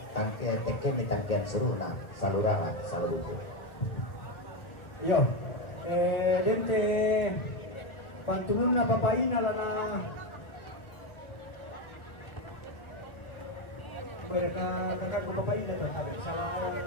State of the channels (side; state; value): right; late; 1.8 ms